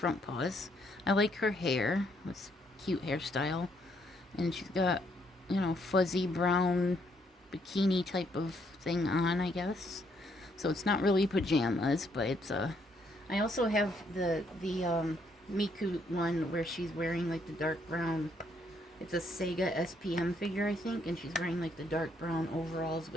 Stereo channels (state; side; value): normal; both; correlation 0.71